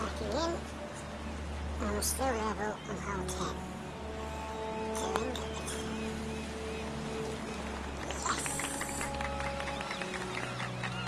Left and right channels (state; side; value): identical; both; correlation 1.00